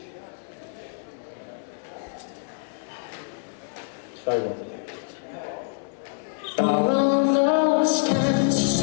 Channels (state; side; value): silent; right; 61 dB below the other